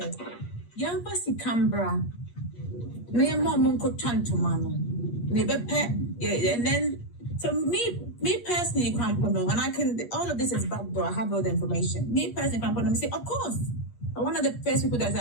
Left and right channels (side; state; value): right; late; 8.4 ms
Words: young Pasi Canberra, near mom could turn to mama. And then, so me personally, and I can, all of this is backdoor, I have all the information. Me personally, I say, of course. I'm one of the first people that's